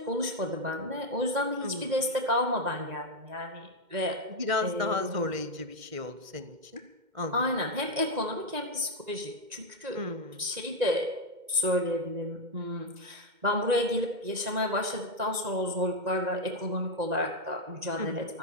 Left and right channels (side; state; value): left; late; 2.1 ms